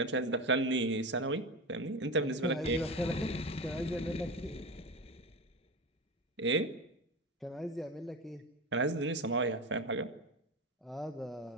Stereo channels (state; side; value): normal; both; correlation 0.23